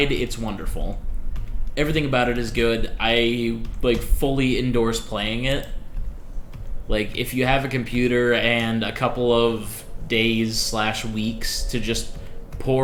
It's wonderful. Everything about it is good. I like fully endorse playing it. Like, if you have a computer and a couple of days/weeks to just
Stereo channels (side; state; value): both; identical; correlation 1.00